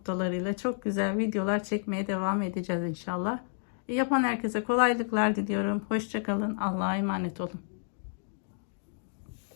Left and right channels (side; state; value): right; silent; digital silence